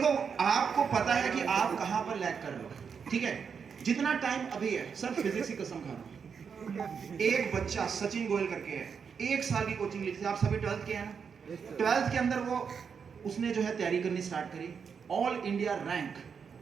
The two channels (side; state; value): left; quieter; 6.4 dB